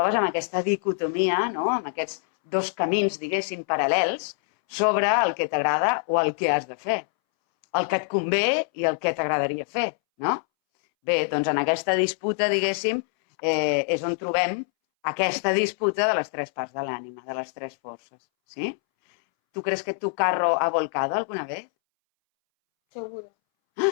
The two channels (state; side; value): silent; right; 62 dB below the other